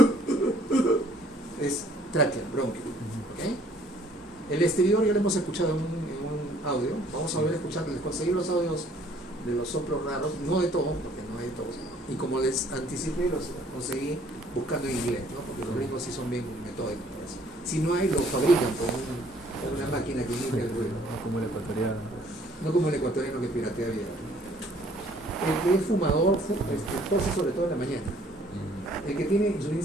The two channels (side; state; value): both; normal; correlation 0.60